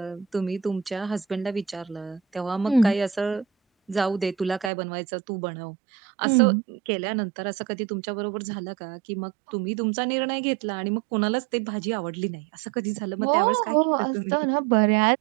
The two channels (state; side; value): drops out; left; at 4.7 s